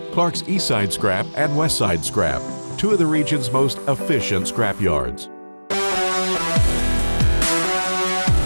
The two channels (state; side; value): inverted; both; correlation -1.00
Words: Clark's Eastside Scrap and Westside Scrap, two of the region's most efficient scrap yards.